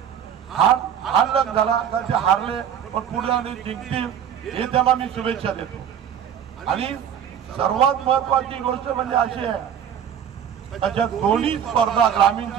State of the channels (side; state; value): left; quieter; 8.8 dB